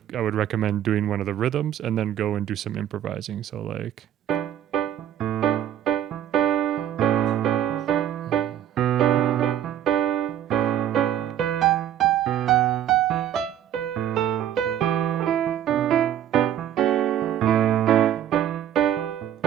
I would recommend doing one of the rhythms and then go and do some improvising. So like,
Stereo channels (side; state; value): left; quieter; 10.8 dB